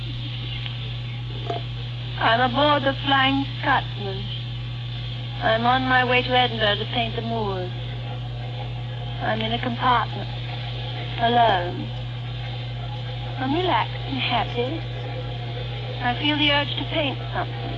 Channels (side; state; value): both; identical; correlation 1.00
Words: I'm aboard the Flying Scotsman. I'm on my way to Edinburgh to paint the moors. I'm in a compartment, alone. I'm relaxed and happy. I feel the urge to paint something.